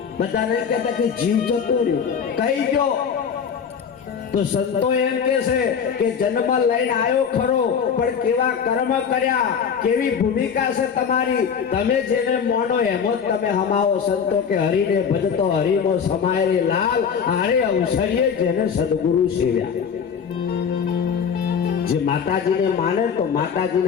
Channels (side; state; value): right; quieter; 7.0 dB